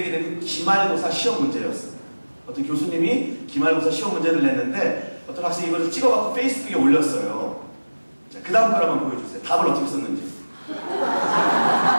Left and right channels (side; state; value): both; inverted; correlation -1.00